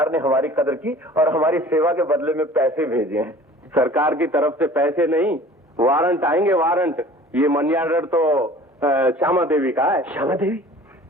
ने हमारी कदर की और हमारी सेवा के बदले में पैसे भेजे हैं। सरकार की तरफ से पैसे नहीं, वारंट आएंगे, वारंट। ये मनी ऑर्डर तो श्यामा देवी का है। श्यामा देवी?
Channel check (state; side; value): normal; both; correlation 0.46